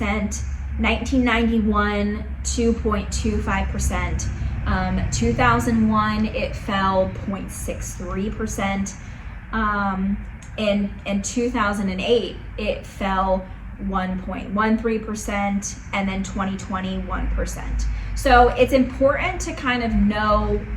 1991, 2.25%. 2001, it fell 0.63%. In 2008, it fell 1.13%, and then 2020, 1%. So it's important to kind of know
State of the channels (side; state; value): both; identical; correlation 1.00